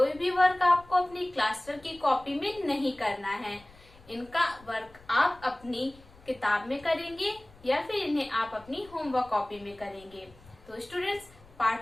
भी वर्क आपको अपनी क्लास वर्क की कॉपी में नहीं करना है। इनका वर्क आप अपनी किताब में करेंगे या फिर इन्हें आप अपनी होमवर्क कॉपी में करेंगे। तो स्टूडेंट्स,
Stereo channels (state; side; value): noise; left; rumble, 24 dB below the sound